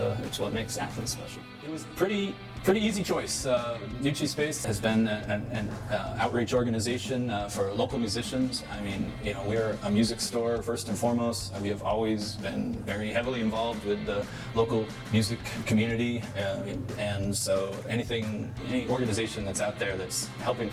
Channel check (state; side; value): identical; both; correlation 1.00